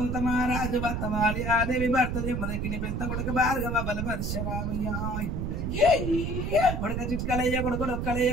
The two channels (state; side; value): noise; right; rumble, 2 dB below the sound